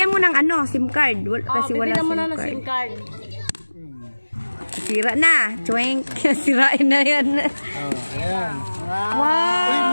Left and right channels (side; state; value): both; inverted; correlation -1.00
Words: mo ng ano, SIM card. Kasi wala bibigyan mo SIM na ng card. SIM card. Sira na. Chwink. Sirain na yan. Ayan. Wow. Uy,